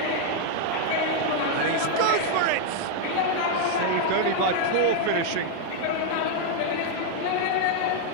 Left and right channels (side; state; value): both; different; correlation 0.00